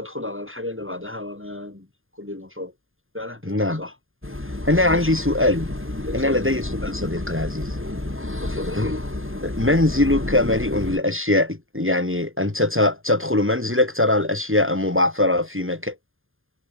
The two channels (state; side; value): late; left; 0.60 ms